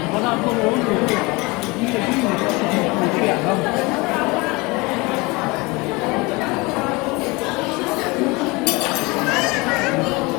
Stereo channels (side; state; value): right; quieter; 24.9 dB